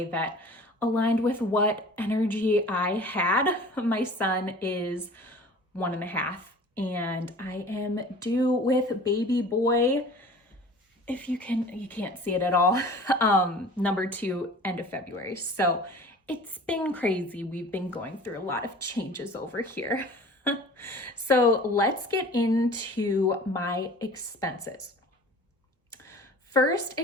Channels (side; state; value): both; normal; correlation 0.43